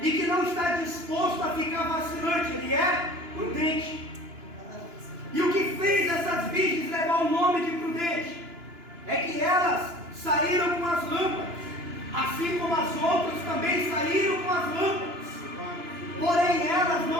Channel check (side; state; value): left; late; 2.9 ms